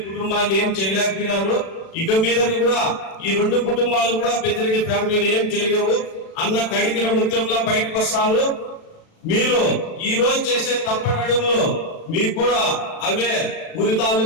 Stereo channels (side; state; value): right; late; 36 ms